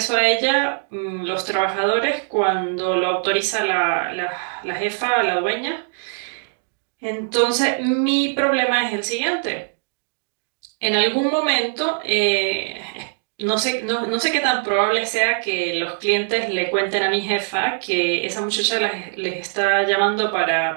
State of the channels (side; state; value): left; silent; digital silence